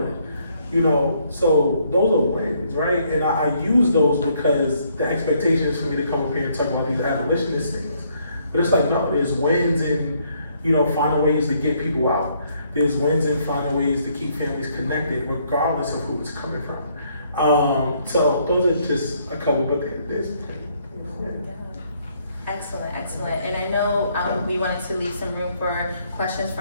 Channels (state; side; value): inverted; both; correlation -0.69